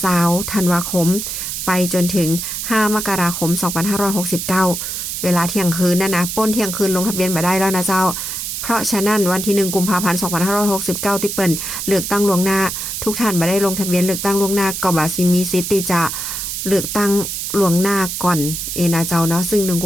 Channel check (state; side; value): noise; right; hiss, 4 dB below the sound